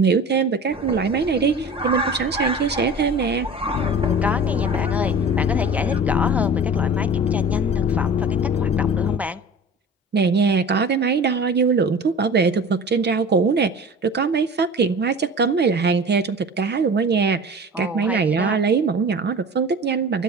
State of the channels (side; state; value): both; normal; correlation 0.38